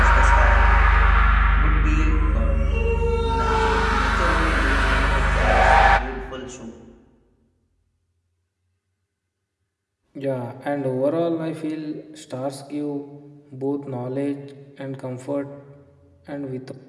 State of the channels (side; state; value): both; identical; correlation 1.00